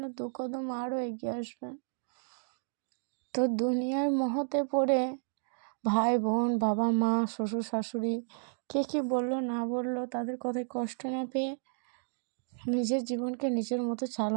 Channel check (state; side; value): silent; left; digital silence